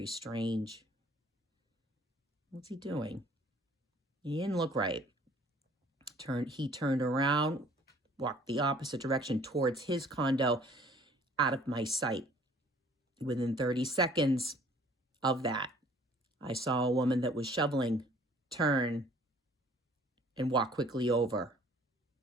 strange. What's he doing? He didn't look right. He turned around, walked the opposite direction towards his condo, out of my sight. Within 30 seconds of that, I saw a woman that was shoveling turn and walk quickly over.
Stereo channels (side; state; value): both; normal; correlation 0.55